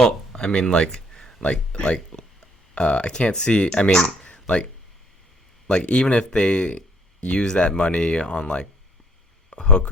I mean, like, I can't see. I mean, like even if they use that money on like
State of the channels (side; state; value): both; normal; correlation 0.64